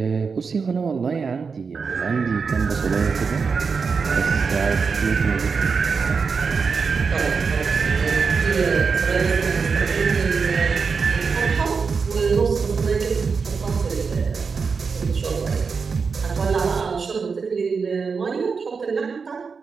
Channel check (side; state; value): left; quieter; 5.2 dB